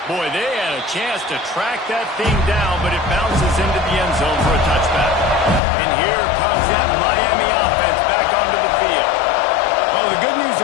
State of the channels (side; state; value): right; drops out; at 5.6 s